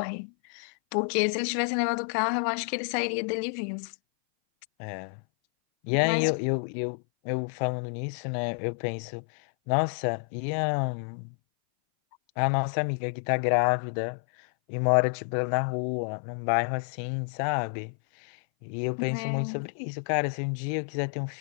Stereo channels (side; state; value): right; silent; 57 dB below the other